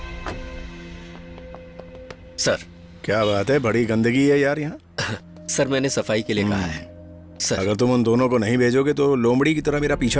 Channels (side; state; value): both; identical; correlation 1.00